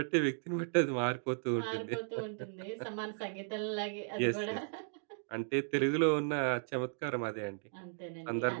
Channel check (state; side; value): silent; left; digital silence